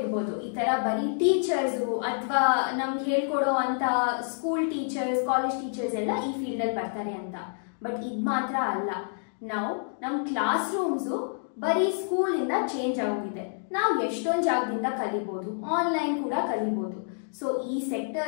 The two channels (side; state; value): right; silent; digital silence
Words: ಈ ತರ ಬರೀ ಟೀಚರ್ಸ್ ಅಥವಾ ನಮ್ಗೆ ಹೇಳ್ಕೊಡೋ ಅಂತ ಸ್ಕೂಲ್ ಟೀಚರ್ಸ್, ಕಾಲೇಜ್ ಟೀಚರ್ಸ್ ಎಲ್ಲ ಈ ಫೀಲ್ಡ್ ಅಲ್ಲಿ ಬರ್ತಾರೆ ಅಂತ. ಬಟ್ ಇದ್ ಮಾತ್ರ ಅಲ್ಲ, ನಾವು ನಮ್ ಕ್ಲಾಸ್ ರೂಮ್ಸು ಬರೀ ಸ್ಕೂಲ್ ಇಂದ ಚೇಂಜ್ ಆಗೋಗಿದೆ. ನಾವು ಎಷ್ಟೊಂದು ಜಾಗದಿಂದ ಕಲಿಬಹುದು, ಆನ್ಲೈನ್ ಕೂಡ ಕಲಿಬಹುದು. ಸೊ ಈ